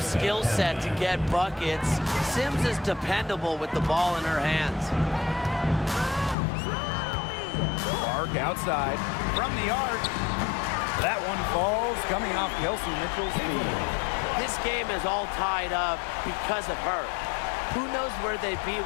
skill set to get buckets, Sims is dependable with the ball in her hands. Clark outside. From the arc. That one falls, coming off Kelsey Mitchell's feet. This game is all tied up because of her. Who knows where they'd be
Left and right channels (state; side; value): drops out; right; at 6.4 s